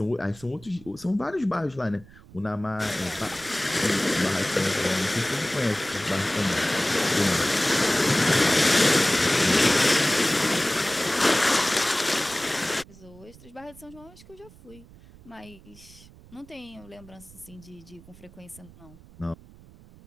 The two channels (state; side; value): noise; right; rumble, 22 dB below the sound